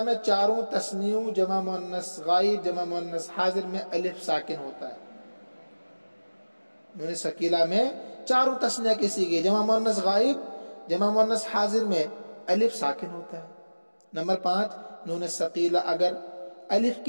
میں چاروں تثنیوں جمع مؤنث غائب جمع مؤنث حاضر میں الف ساکن ہوتا ہے. نون ثقیلہ میں چاروں تثنیہ کی صیغے جمع مؤنث غائب جمع مؤنث حاضر میں الف ساکن ہوتا ہے. نمبر 5، نون ثقیلہ اگر الف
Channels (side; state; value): both; inverted; correlation -1.00